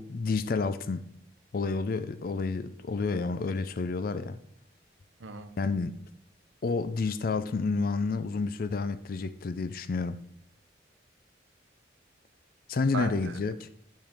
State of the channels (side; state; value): right; quieter; 3.5 dB